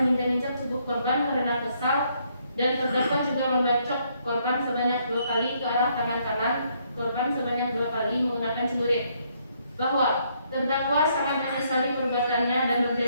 menginjak-injak tubuh korban karena kesal, dan terdakwa juga membacok korban sebanyak 2 kali ke arah tangan kanan korban sebanyak 2 kali menggunakan celurit. Bahwa terdakwa sangat menyesali perbuatannya dan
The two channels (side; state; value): both; inverted; correlation -0.71